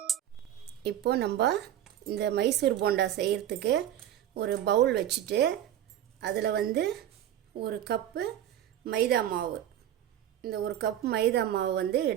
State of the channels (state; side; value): quieter; left; 11.3 dB